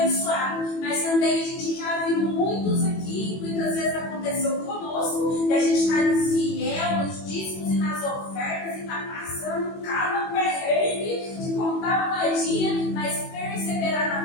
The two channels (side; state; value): right; late; 21 ms